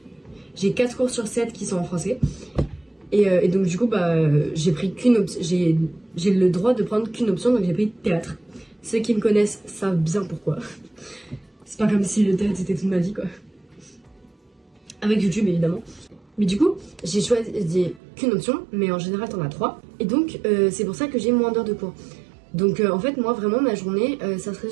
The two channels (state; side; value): drops out; left; at 18.0 s